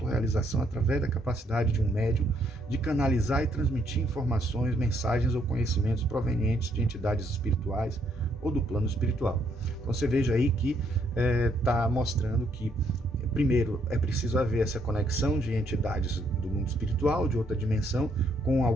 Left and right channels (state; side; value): normal; both; correlation 0.71